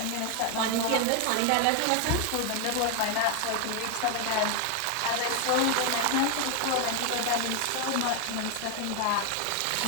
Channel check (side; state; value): both; different; correlation 0.01